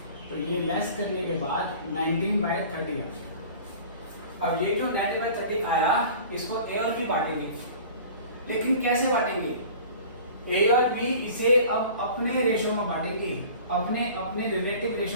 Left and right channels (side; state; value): both; inverted; correlation -0.43